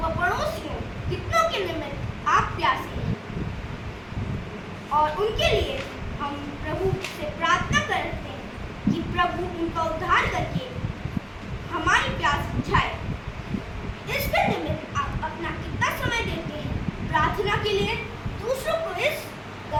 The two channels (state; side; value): identical; both; correlation 1.00